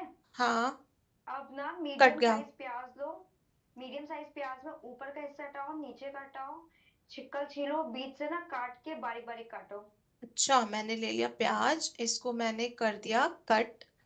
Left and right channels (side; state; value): both; identical; correlation 1.00